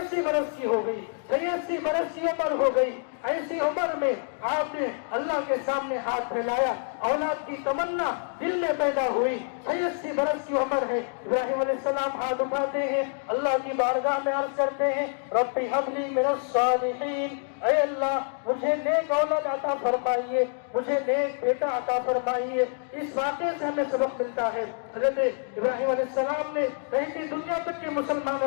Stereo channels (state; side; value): silent; right; 60 dB below the other